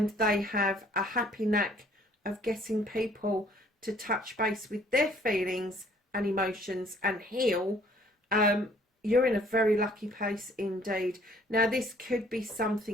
they have a happy knack of getting people to touch base with their feelings and emotions and heal, you're in a very lucky place indeed. Now, this could be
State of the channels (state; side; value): normal; both; correlation 0.59